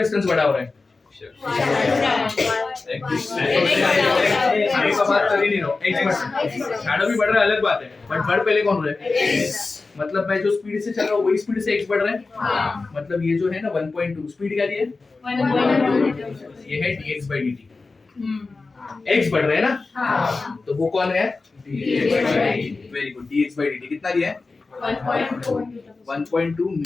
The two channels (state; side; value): quieter; right; 3.8 dB